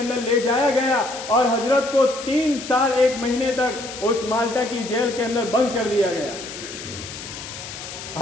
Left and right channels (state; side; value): noise; left; hiss, 11 dB below the sound